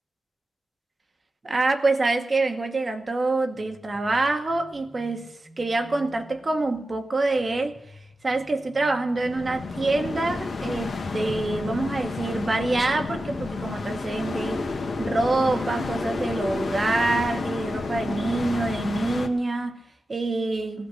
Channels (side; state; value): both; normal; correlation 0.92